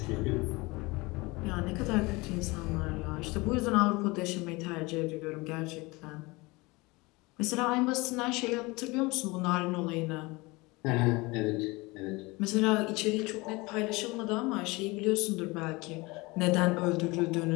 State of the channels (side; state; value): right; quieter; 23.8 dB